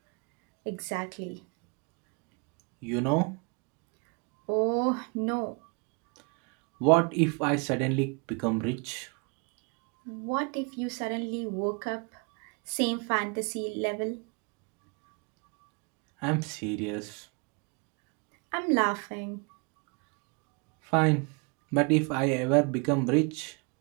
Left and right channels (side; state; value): left; quieter; 33.2 dB